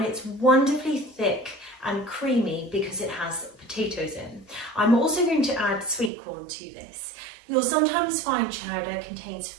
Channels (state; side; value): drops out; left; at 6.1 s